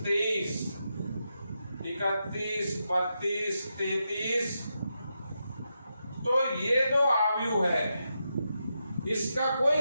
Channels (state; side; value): inverted; both; correlation -0.86